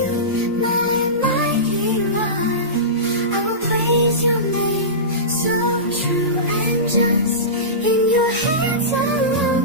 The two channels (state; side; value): normal; both; correlation -0.20